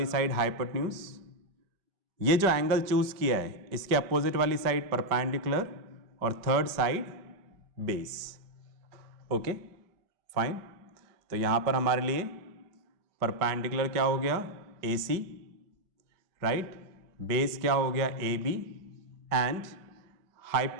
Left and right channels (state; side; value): late; left; 5.1 ms